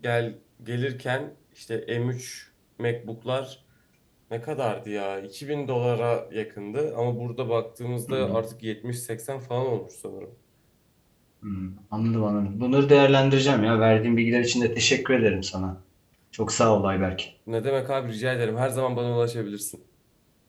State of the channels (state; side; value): identical; both; correlation 1.00